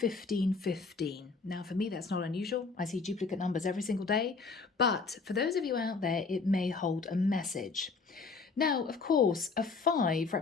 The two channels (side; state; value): right; quieter; 4.5 dB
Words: Now, for me, that's not unusual. I see duplicate numbers every single day. But for those of you out there, it may hold a message. Now, of course, a 5